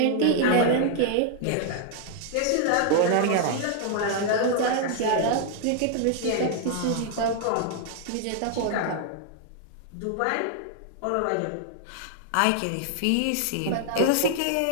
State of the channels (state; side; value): different; both; correlation 0.00